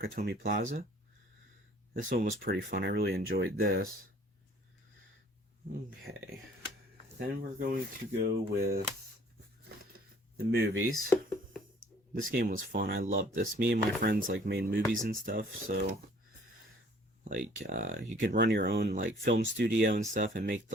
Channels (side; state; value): both; normal; correlation 0.55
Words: Plaza. This one was pretty fun. I really enjoyed this. Okay, then we're going to go with the movies. This game was fun. I loved this. Me and my friends like made movies and stuff, so like you could run your own like film studio and stuff and make